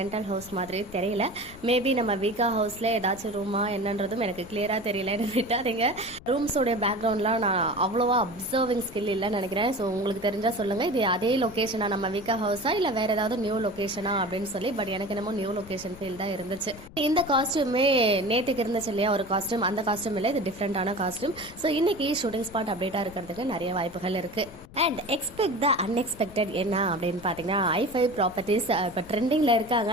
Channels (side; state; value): left; noise; rumble, 19 dB below the sound